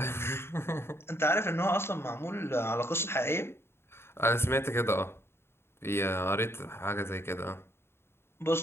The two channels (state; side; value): late; right; 0.12 ms